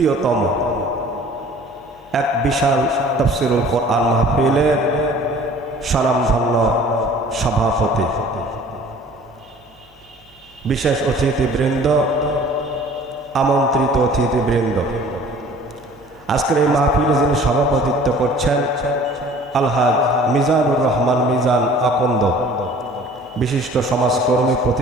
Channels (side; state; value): both; normal; correlation 0.49